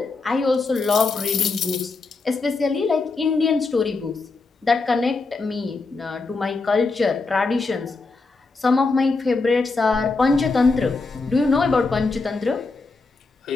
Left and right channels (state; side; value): quieter; right; 3.9 dB